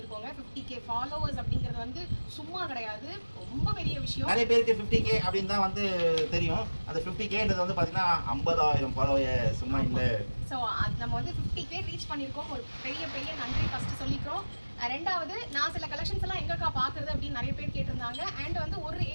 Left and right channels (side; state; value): both; inverted; correlation -1.00